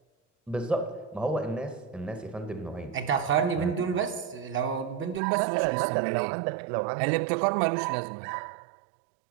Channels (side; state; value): left; drops out; at 5.2 s